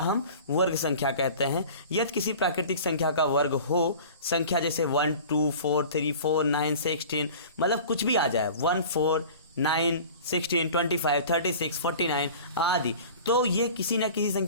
वर्ग संख्या कहते हैं। यदि किसी प्राकृतिक संख्या का वर्ग हो, संख्या जैसे 1 2 4 3 4 9 16, मतलब कुछ भी आ जाए, 1 4 9 16 25 36 49 आदि, तो ये किसी न किसी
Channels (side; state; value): both; inverted; correlation -0.41